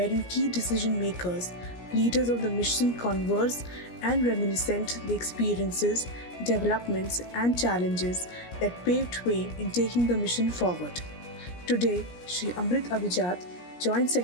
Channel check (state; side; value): late; right; 17 ms